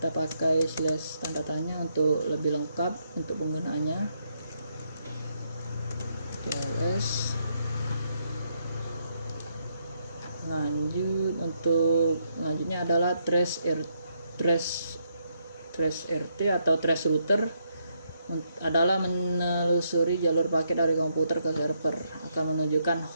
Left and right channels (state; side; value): inverted; both; correlation -0.77